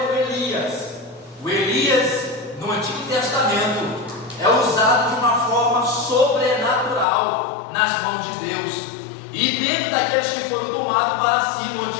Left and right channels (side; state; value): right; drops out; at 7.1 s